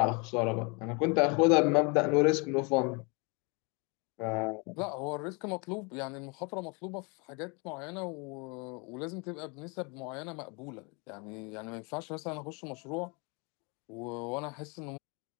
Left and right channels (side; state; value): right; quieter; 31.5 dB